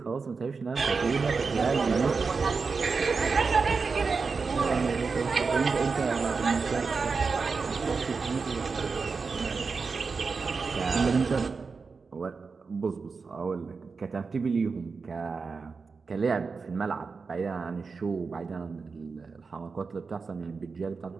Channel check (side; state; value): left; quieter; 4.8 dB